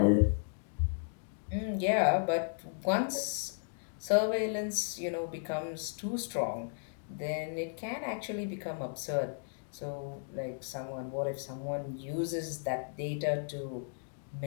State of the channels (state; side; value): silent; right; digital silence